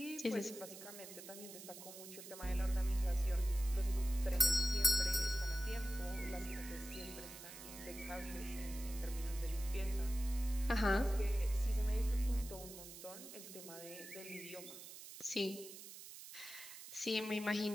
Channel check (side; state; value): right; noise; hiss, 13 dB below the sound